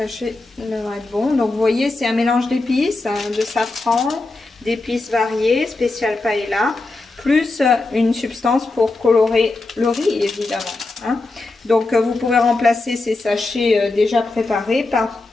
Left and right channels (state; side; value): quieter; right; 3.2 dB